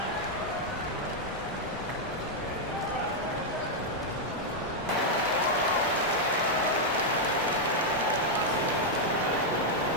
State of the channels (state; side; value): normal; both; correlation -0.02